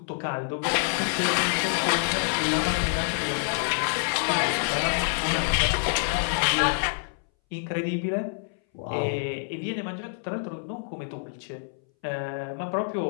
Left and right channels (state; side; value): silent; right; 60 dB below the other